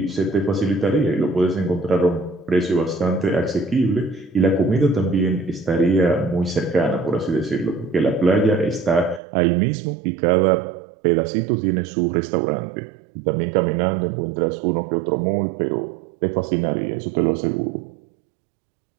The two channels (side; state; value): left; drops out; at 9.2 s